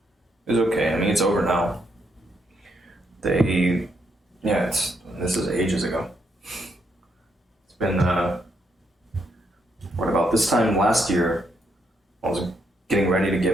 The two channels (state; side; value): normal; both; correlation 0.77